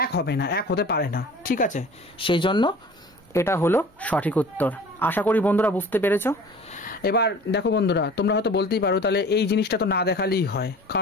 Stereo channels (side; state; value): both; normal; correlation 0.43